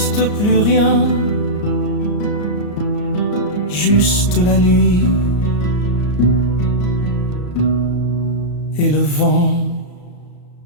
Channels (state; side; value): late; right; 34 ms